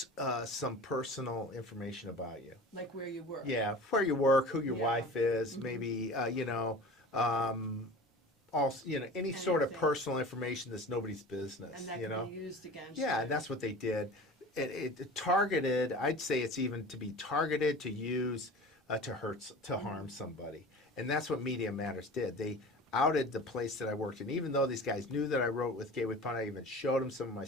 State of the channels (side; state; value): both; normal; correlation 0.37